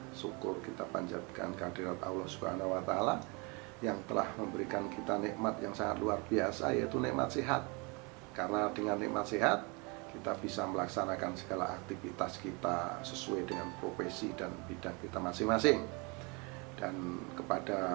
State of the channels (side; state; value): left; quieter; 30.0 dB